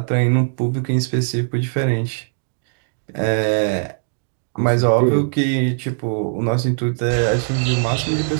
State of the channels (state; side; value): silent; left; digital silence